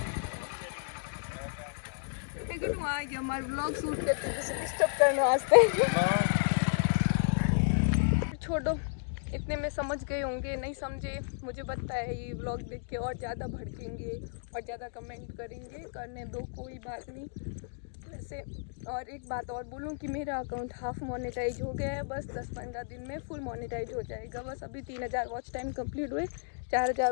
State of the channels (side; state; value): right; silent; digital silence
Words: देखो, आ गया हमारे व्लॉग शूट करते, डिस्टर्ब करने वास्ते। छोड़ो, इतने में समझ गए होंगे, नहीं समझे मुझे पता है। ये व्लॉग देख के और ज़्यादा भड़केंगे और ज़्यादा कमेंट करेंगे, करने दो, कोई बात नहीं। वैसे और एक बात और बोलूँ कि मेरा अकाउंट हाफ मोनेटाइज हो गया है, बस 10-15 दिन में फुल मोनेटाइज हो जाएगा। बस अभी 3000 वॉच टाइम कंप्लीट हुए, 4000